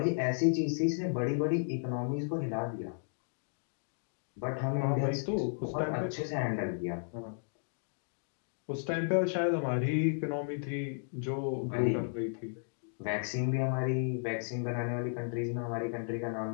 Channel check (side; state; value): right; silent; digital silence